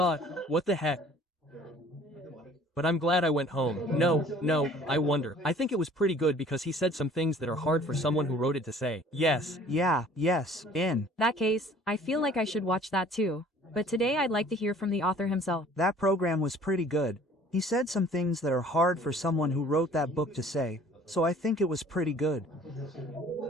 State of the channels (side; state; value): both; normal; correlation 0.52